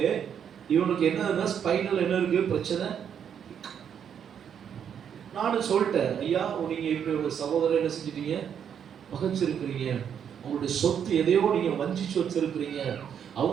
இவனுக்கு என்ன ஸ்பைனல் என்ன இருக்கு பிரச்சனை. நானும் சொல்லிட்டேன், ஐயா நீங்க இப்படி ஒரு சகோதரர் என்ன செஞ்சிட்டீங்க? பகைச்சிருக்கிறீங்க, உங்களுடைய சொத்து எதையோ நீங்க வஞ்சிச்சு வச்சிருக்கிறீங்க,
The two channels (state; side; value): quieter; left; 8.3 dB